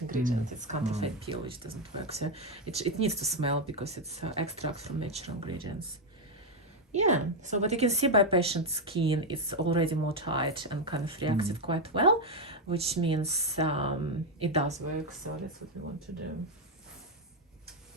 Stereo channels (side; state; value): both; normal; correlation 0.05